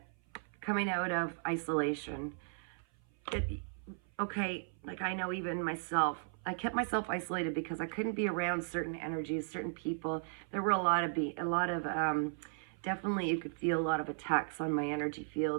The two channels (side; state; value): left; silent; 54 dB below the other